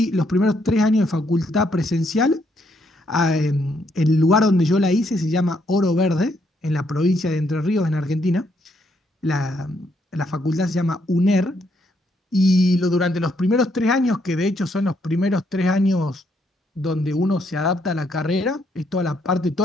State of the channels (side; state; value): both; normal; correlation 0.73